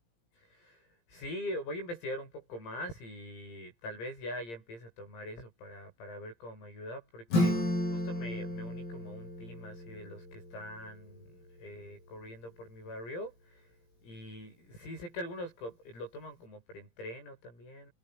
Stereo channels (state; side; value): late; right; 17 ms